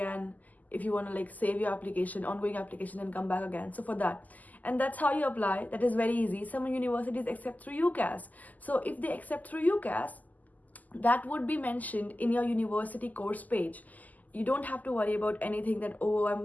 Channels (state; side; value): late; right; 0.080 ms